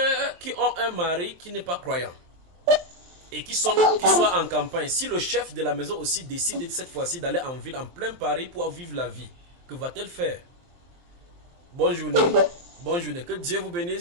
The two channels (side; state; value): left; late; 23 ms